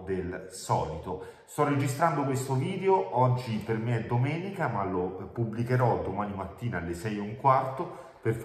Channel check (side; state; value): both; identical; correlation 1.00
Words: del solito. Sto registrando questo video, oggi per me è domenica, ma lo pubblicherò domani mattina alle 6:15 per